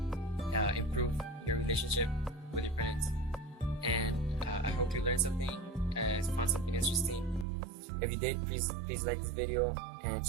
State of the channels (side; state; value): left; drops out; at 7.5 s